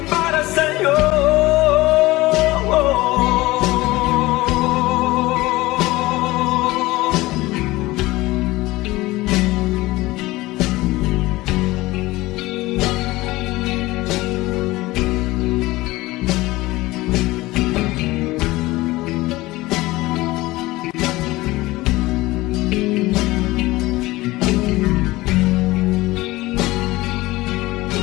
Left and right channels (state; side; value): quieter; right; 19.4 dB